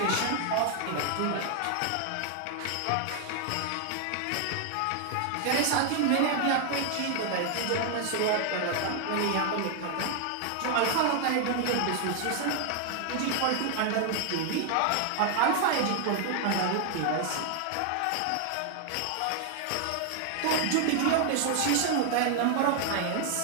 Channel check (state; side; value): different; both; correlation 0.00